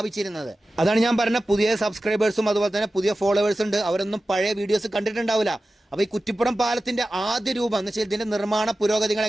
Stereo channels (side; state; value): both; normal; correlation 0.95